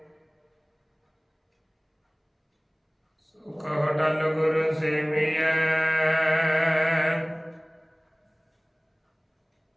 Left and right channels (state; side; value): identical; both; correlation 1.00